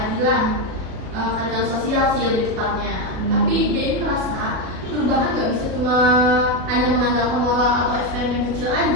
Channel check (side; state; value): left; late; 37 ms